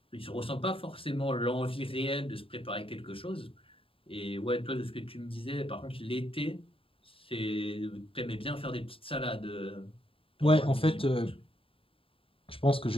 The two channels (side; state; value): right; late; 0.27 ms